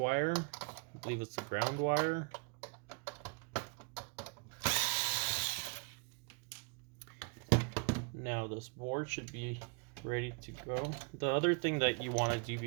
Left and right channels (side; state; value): left; quieter; 35.4 dB